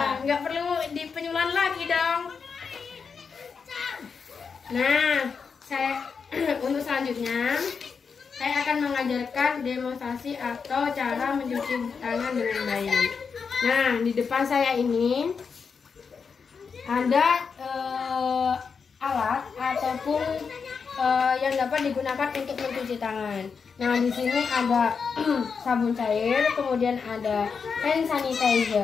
Nggak perlu di penyuluhan lagi dong. Nah, saya untuk selanjutnya saya akan mengajarkan demonstrasi atau cara mencuci tangan dengan baik. Nah, di depan saya ini ada alat ataupun yang dapat digunakan untuk mencuci tangan. Nah, di sini ada sabun cair, kemudian ada hand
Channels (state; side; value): quieter; right; 5.7 dB